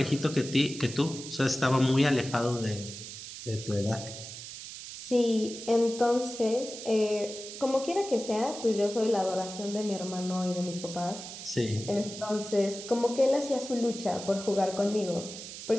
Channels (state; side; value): noise; right; hiss, 11 dB below the sound